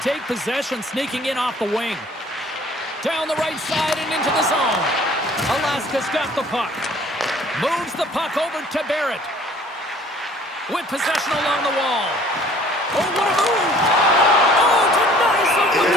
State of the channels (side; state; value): both; normal; correlation 0.53